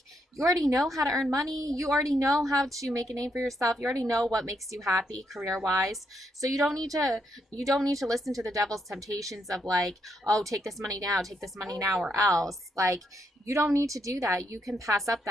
already know how to earn money. You already know how to make a name for yourself. You already know what makes you happy career wise. So you don't need to listen to the devil's temptations of like, oh, take this money now, take this money now, or else. Like, you don't need to do that. You can pass up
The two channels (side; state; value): both; normal; correlation 0.78